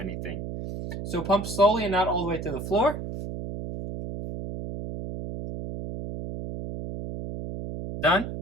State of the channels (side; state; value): right; noise; hum, 7 dB below the sound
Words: So pump slowly and not all the way to the floor. Done.